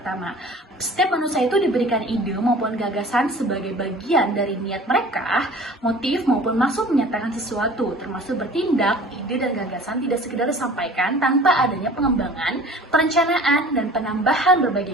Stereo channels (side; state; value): both; normal; correlation 0.45